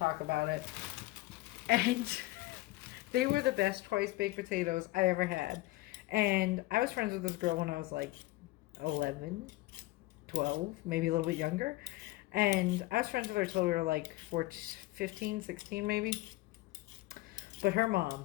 about it. And they were the best twice baked potatoes I ever had. And I was friends with this girl when I was like 11, 12, maybe a little bit younger. And I was friends with her till we were like 14, 15, 16 maybe. But her mom,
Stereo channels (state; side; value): quieter; right; 19.0 dB